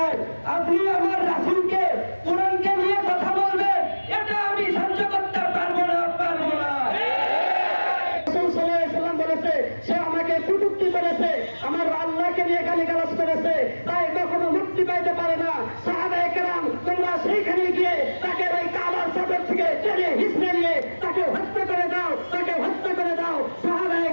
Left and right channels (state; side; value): inverted; both; correlation -1.00